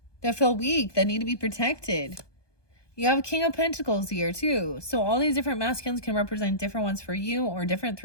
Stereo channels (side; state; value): right; late; 1.2 ms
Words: that feel weak, that need to be protected. You have a King of Pentacles here too. So all these different masculines can represent different ones for you or